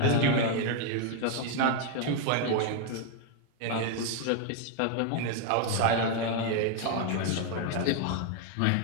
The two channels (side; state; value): both; different; correlation 0.01